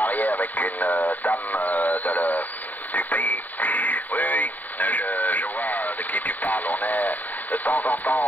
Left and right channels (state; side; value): late; right; 0.083 ms